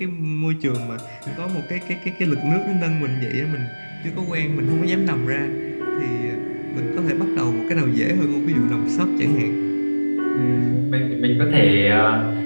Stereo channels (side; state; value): both; inverted; correlation -1.00